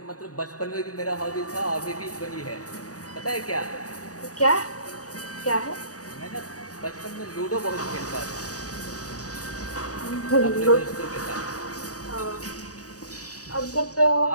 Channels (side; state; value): right; late; 0.66 ms